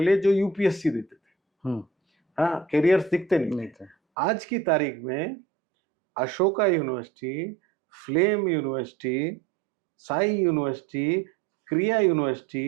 जो यूपीएससी देते थे. हाँ, कैरियर्स दिखते नहीं थे. आज की तारीख में Ashoka university, flame university, Sai university, क्रिया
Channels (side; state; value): left; drops out; at 4.0 s